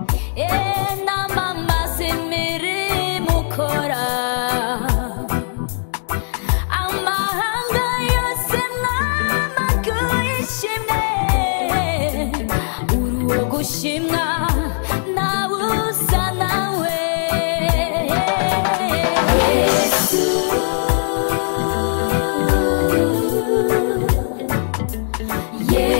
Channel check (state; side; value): silent; right; digital silence